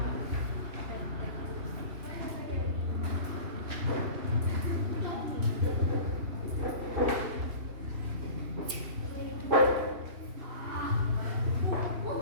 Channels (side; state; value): left; late; 3.0 ms